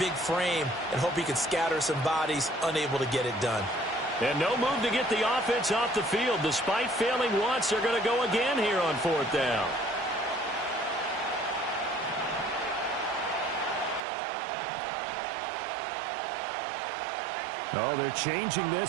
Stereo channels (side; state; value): left; drops out; at 14.0 s